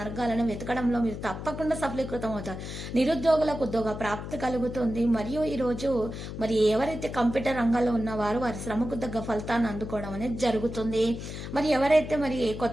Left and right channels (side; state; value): left; noise; hum, 8 dB below the sound